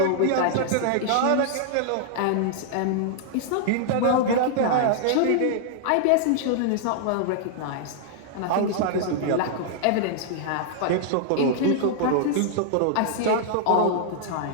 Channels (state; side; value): different; both; correlation -0.01